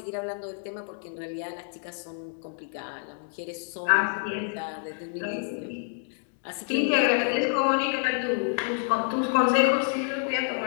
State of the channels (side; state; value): right; silent; 59 dB below the other